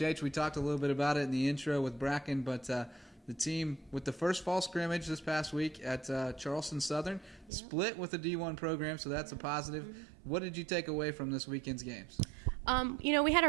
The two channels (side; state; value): left; drops out; at 7.5 s